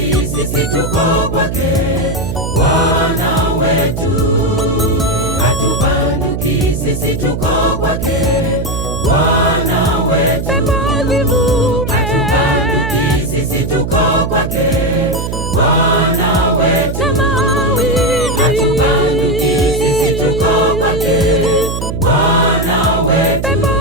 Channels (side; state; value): right; noise; hum, 4 dB below the sound